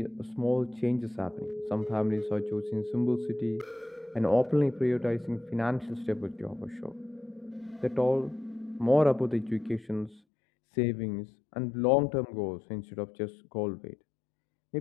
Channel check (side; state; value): right; drops out; at 10.2 s